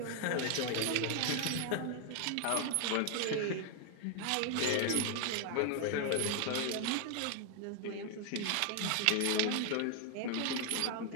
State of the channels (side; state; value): both; different; correlation 0.00